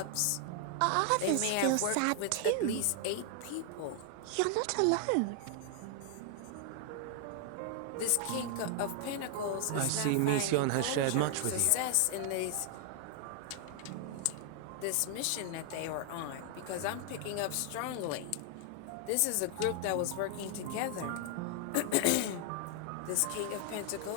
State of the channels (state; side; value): different; both; correlation 0.00